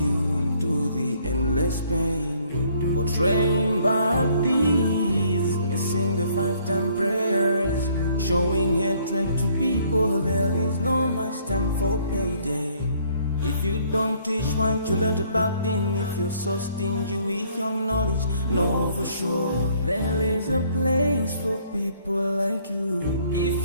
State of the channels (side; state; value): both; inverted; correlation -0.63